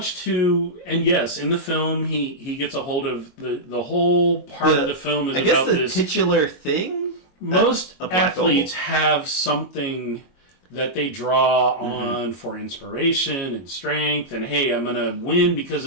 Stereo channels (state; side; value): late; right; 22 ms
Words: to, and yes, in the film he gets a hold of the whole part of the film is about this. I guess the titular thing? Most athletes have something that they draw on for inspiration and strength, and hey, I'm gonna win because